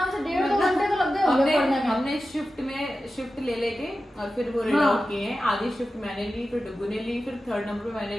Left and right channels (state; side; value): normal; both; correlation 0.93